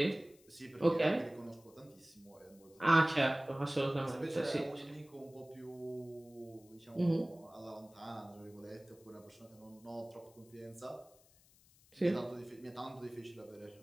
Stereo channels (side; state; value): left; noise; hiss, 28 dB below the sound